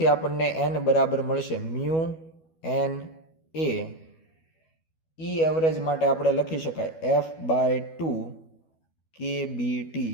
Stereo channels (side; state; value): right; late; 12 ms